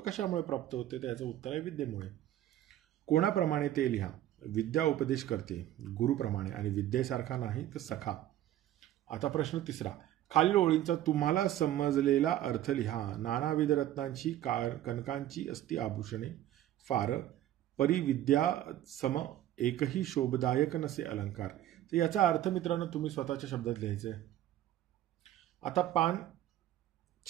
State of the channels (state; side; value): quieter; left; 12.9 dB